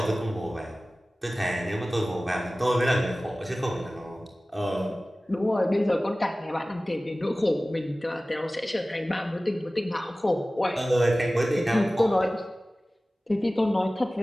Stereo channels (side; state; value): both; normal; correlation 0.97